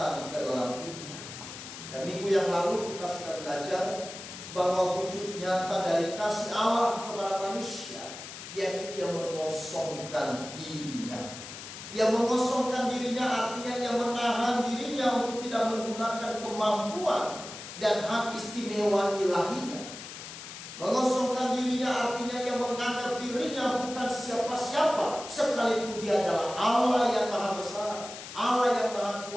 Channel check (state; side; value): noise; left; hiss, 12 dB below the sound